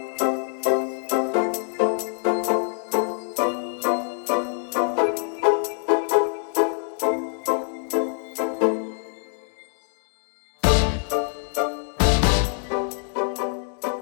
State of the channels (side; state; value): right; silent; 62 dB below the other